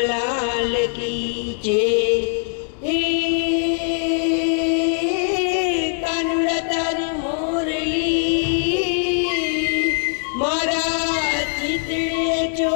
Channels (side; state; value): right; silent; 57 dB below the other